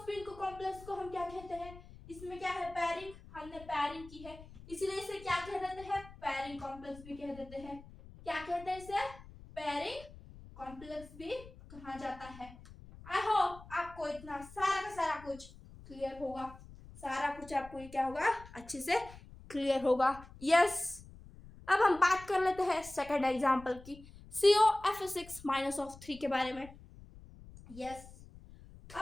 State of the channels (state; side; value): noise; left; rumble, 18 dB below the sound